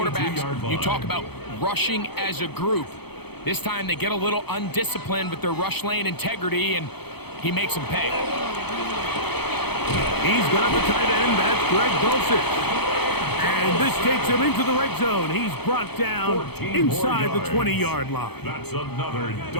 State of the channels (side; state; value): right; late; 0.98 ms